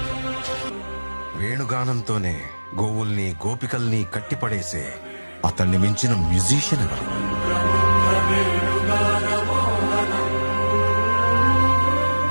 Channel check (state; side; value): inverted; both; correlation -1.00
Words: వేణుగానంతోనే గోవుల్ని గోపికల్ని కట్టిపడేసే అతన్ని మించిన మ్యూజిషియన్ ఎవరు?